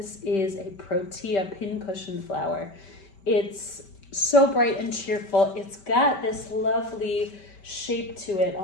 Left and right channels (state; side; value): late; right; 5.2 ms